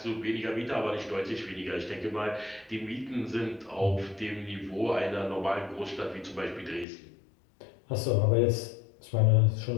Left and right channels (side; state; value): right; drops out; at 6.9 s